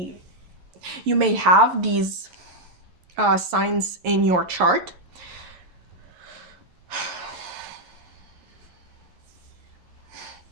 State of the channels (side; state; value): left; late; 11 ms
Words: have these signs in your chart.